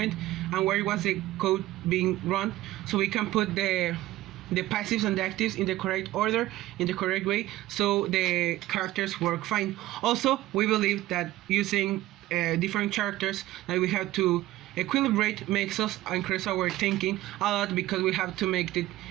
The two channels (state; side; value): quieter; left; 16.1 dB